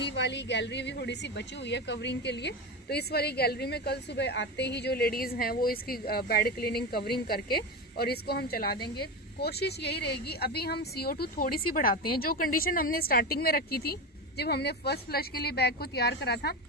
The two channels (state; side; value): normal; both; correlation 0.20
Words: वाली गैलरी भी थोड़ी सी बची हुई है कवरिंग के लिए। तो इस वाली गैलरी में कल सुबह आते ही जो लेडीज हैं वो इसकी बेड क्लीनिंग कवरिंग करके और इसको हम चला देंगे। कोशिश यही रहेगी, अभी हम CO2 थोड़ी सी बढ़ाते हैं। जो कंडीशन हमने स्टार्टिंग में रखी थी जब हमने फर्स्ट फ्लश के लिए बैग को तैयार करा था,